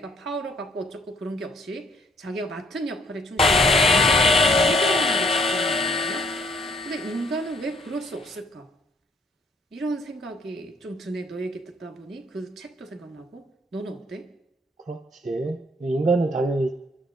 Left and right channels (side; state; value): both; normal; correlation 0.64